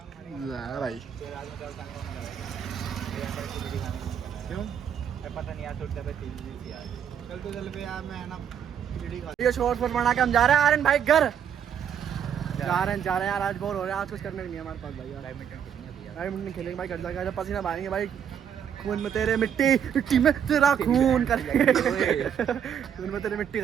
भाई क्यों पता नहीं यार छोटा पे तेल थी यार चल पे यार मैं ना खिचड़ी खा ये शॉर्ट पर बना के हम जा रहे हैं आर्यन भाई घर जा रहे हैं यार आज बोर हो रहे हैं आज कुछ करने नहीं है हमारे पास भाई यार बैडमिंटन खेलेंगे भाई घर जाके पसीना बहाएंगे भाई खून में तेरे मिट्टी मिट्टी में तेरा खून कर खून में तेरे मिट्टी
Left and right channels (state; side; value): quieter; left; 8.6 dB